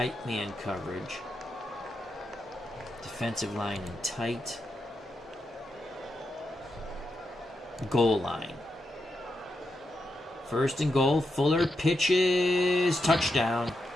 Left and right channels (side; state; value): both; normal; correlation 0.85